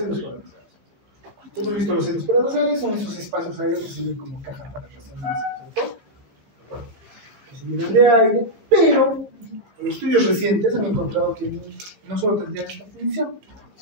paranasales. Hemos visto los senos paranasales, son esos espacios aéreos que sirven como caja para resonancia, ¿cierto? Que se llenan de aire, pero en estudios recientes han encontrado que no solo tendrían esta función,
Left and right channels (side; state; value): left; late; 15 ms